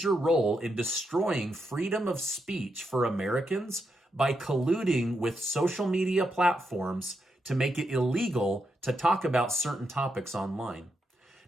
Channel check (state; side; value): normal; both; correlation 0.83